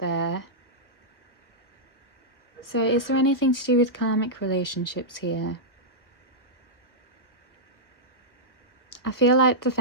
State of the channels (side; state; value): right; late; 1.3 ms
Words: So is there anything to do with karmic relationships here? I feel like the